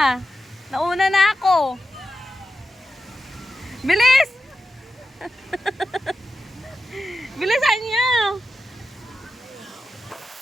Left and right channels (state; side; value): normal; both; correlation 0.91